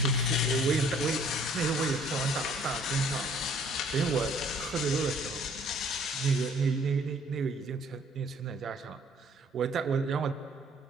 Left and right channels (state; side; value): normal; both; correlation 0.58